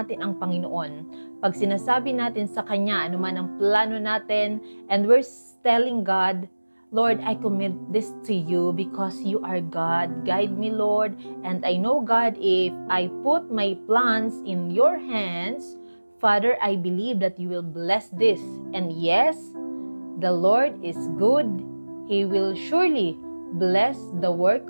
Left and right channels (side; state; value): both; inverted; correlation -1.00